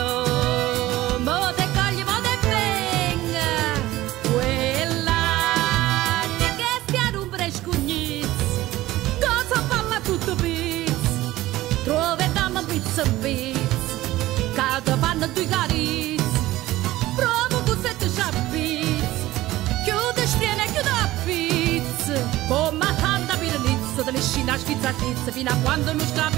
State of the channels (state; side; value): quieter; left; 16.7 dB